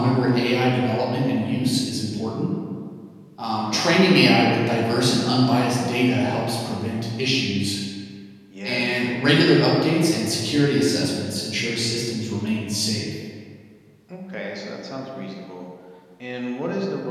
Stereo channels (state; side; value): identical; both; correlation 1.00